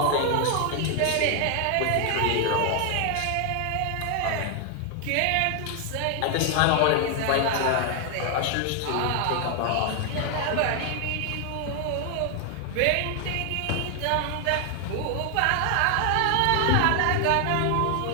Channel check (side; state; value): both; different; correlation 0.00